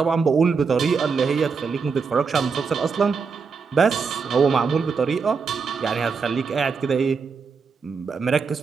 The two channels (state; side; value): quieter; left; 5.3 dB